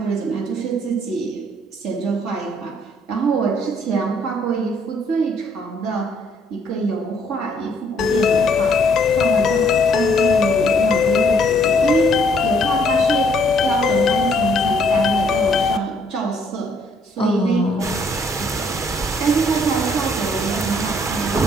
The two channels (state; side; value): normal; both; correlation 0.66